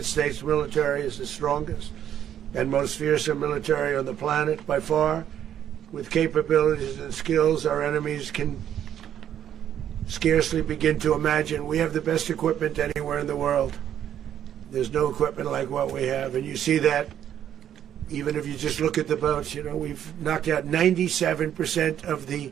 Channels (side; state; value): left; quieter; 10.1 dB